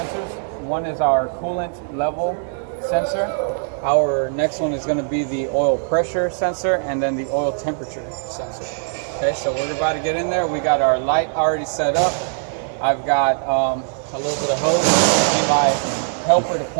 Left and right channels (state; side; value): silent; left; digital silence